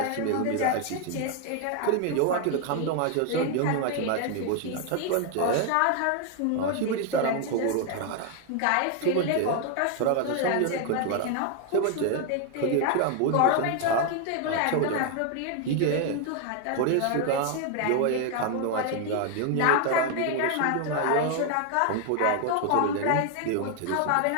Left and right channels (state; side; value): different; both; correlation 0.01